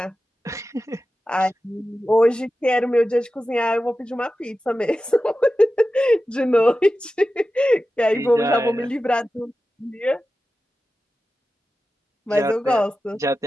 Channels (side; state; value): both; normal; correlation 0.93